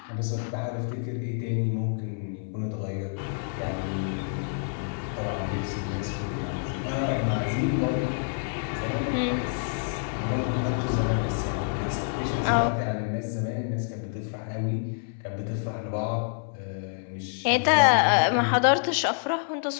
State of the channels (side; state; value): right; silent; 60 dB below the other